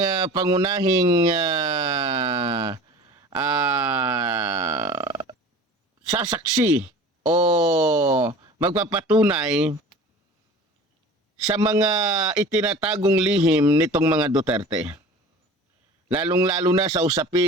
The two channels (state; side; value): normal; both; correlation 0.40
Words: pangunahing sasaksi o magpapatunay sa mga itinatagong lihim nitong mga Duterte. Lalong-lalo na sa